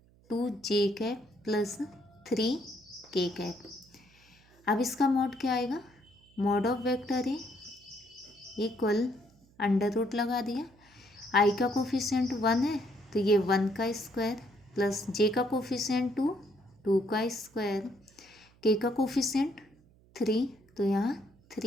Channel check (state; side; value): noise; right; hum, 29 dB below the sound